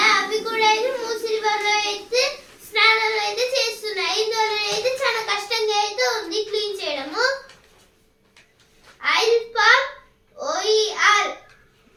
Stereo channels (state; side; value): identical; both; correlation 1.00